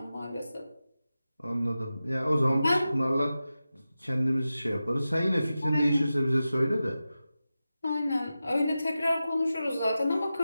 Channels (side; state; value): both; inverted; correlation -0.93